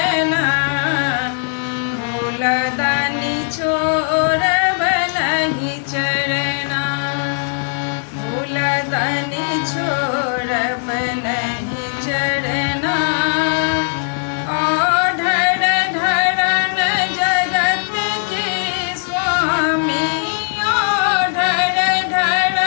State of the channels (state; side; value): silent; right; digital silence